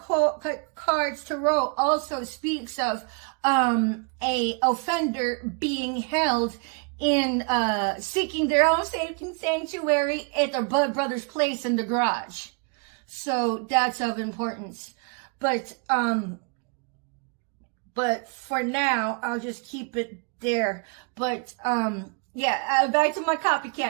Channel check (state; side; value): quieter; left; 36.2 dB